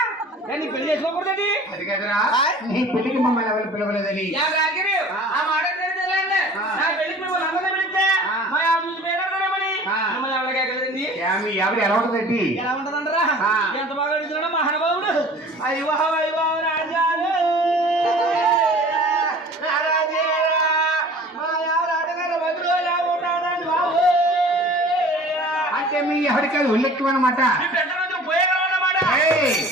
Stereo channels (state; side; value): normal; both; correlation 0.45